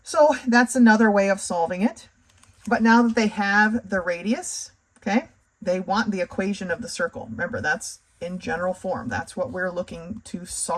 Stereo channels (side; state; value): both; identical; correlation 1.00